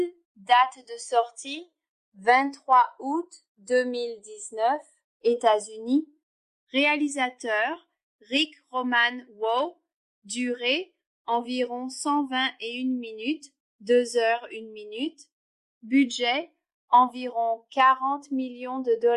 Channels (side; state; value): both; identical; correlation 1.00